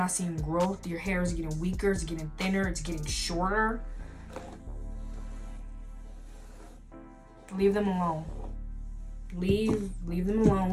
seeing growth. Your hair is getting weaker, it's getting thinner, it's getting shorter. Leave them alone. Leave them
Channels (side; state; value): both; identical; correlation 1.00